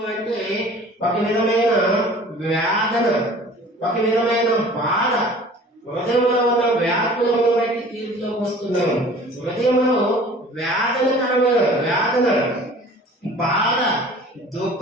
అంటే ఒక విధమైన వేదన, ఒక విధమైన బాధ. హృదయంలో ఉన్న వ్యాకులమును బట్టి తీర్పులోకి వస్తున్నాం. హృదయంలో వేదన, బాధ,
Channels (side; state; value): both; normal; correlation 0.46